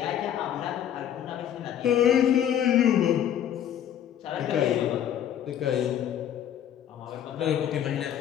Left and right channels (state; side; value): quieter; right; 10.1 dB